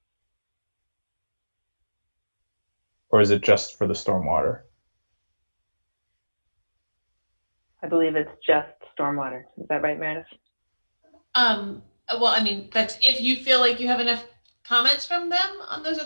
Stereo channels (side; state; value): both; inverted; correlation -1.00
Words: Or is it just for the stormwater? I believe it's just stormwater. Is that right, Meredith? Well, I mean, that's if you feel like you have enough comments from them on those